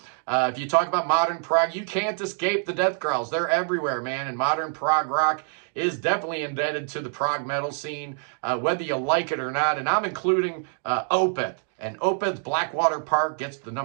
If you talk about modern prog, you can't escape the death growls. They're everywhere, man. And modern prog rock is definitely indebted to the prog metal scene, whether you like it or not. And I'm including Opeth. And Opeth's Blackwater Park gets the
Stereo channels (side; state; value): left; silent; digital silence